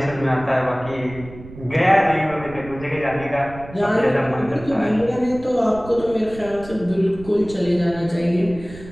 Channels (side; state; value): right; noise; rumble, 16 dB below the sound